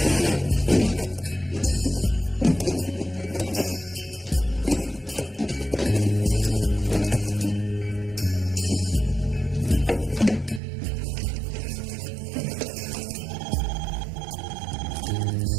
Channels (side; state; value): left; drops out; at 10.6 s